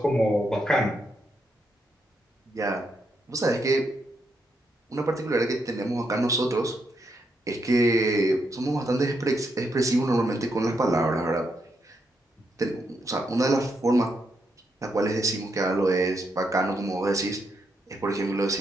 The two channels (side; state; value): both; normal; correlation 0.80